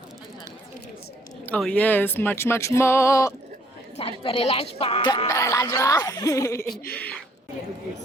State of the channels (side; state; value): both; normal; correlation 0.65